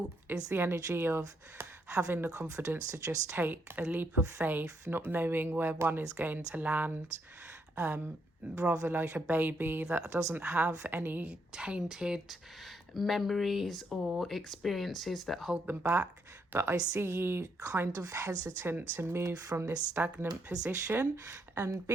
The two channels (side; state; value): both; normal; correlation 0.76